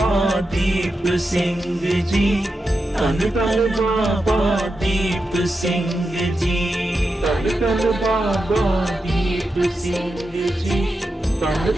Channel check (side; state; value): both; normal; correlation 0.89